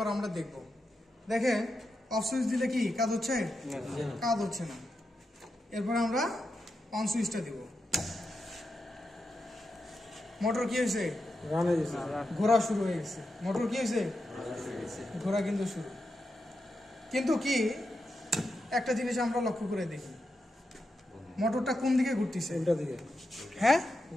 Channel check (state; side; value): normal; both; correlation 0.87